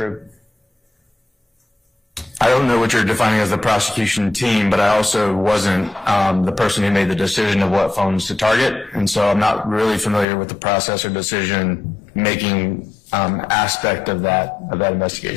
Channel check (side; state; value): right; drops out; at 10.2 s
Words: I don't know what you're defining as the prosecution team, but I also wasn't the person who made the decision of what phones to target, and so I'm not really familiar with the process or decision-making aspect of that